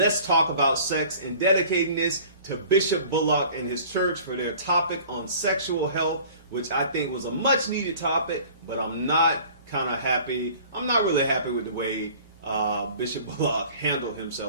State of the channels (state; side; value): inverted; both; correlation -0.48